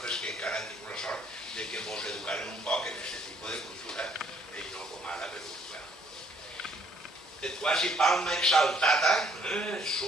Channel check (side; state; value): both; normal; correlation 0.65